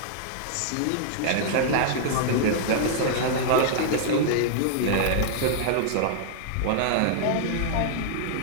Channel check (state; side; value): different; both; correlation -0.01